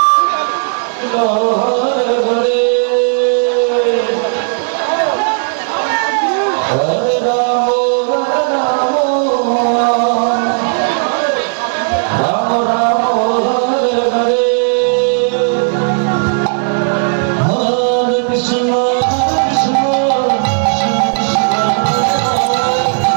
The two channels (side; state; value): left; silent; digital silence